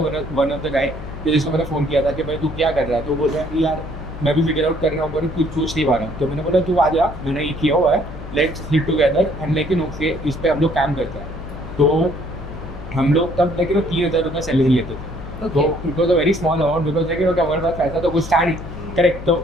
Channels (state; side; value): noise; left; hum, 11 dB below the sound